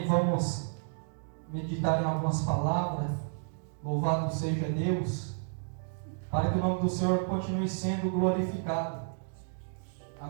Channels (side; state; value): left; silent; digital silence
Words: Vamos meditar em algumas palavras. Louvado seja Deus, para que o nome do Senhor continue sendo glorificado.